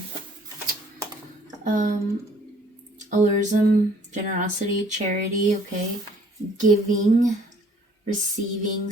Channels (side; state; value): both; normal; correlation 0.57